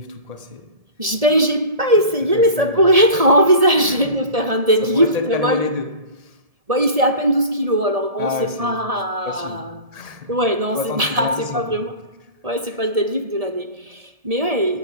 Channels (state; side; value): late; left; 1.7 ms